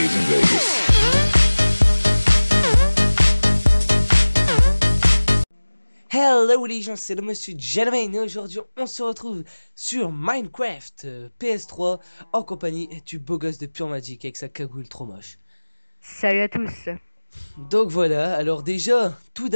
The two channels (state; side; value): inverted; both; correlation -1.00